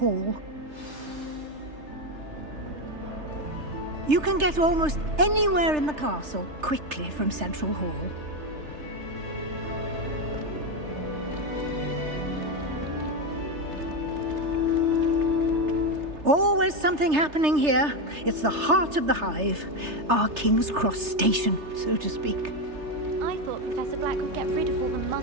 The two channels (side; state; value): left; late; 3.3 ms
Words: You can get almost anywhere in the castle quickly from Central Hall. Always something happening here. It's the heart of the Hive. Our King's Cross station, so to speak. I thought Professor Black would get rid of all the